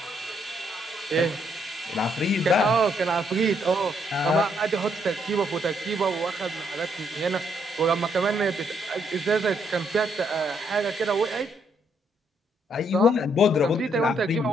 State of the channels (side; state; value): both; normal; correlation 0.72